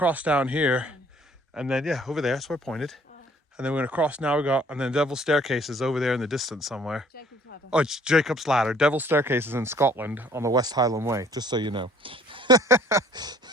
down here, and then yeah, over there, that's where I pointed. And then we're going to cross now, and then Devil's Staircase is over there in the distance somewhere. Jacob's Ladder. Oh, it's Jacob's Ladder. Devil's Staircase is in Scotland on the West Highland Way, just so you know.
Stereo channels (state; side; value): normal; both; correlation 0.58